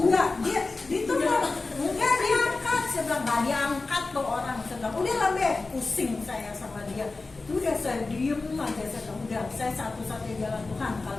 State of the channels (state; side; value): quieter; right; 3.6 dB